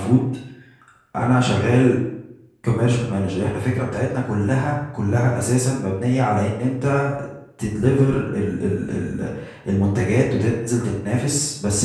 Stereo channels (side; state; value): both; identical; correlation 1.00